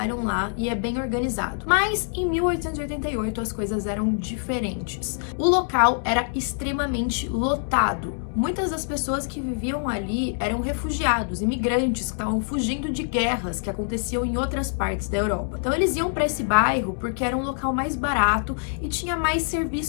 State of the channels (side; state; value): right; silent; digital silence